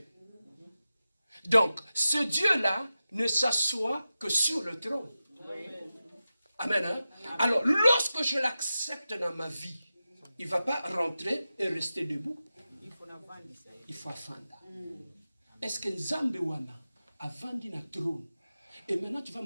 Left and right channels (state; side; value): inverted; both; correlation -0.93